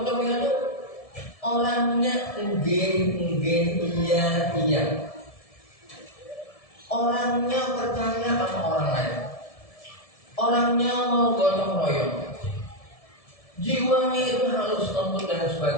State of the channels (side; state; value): right; late; 1.7 ms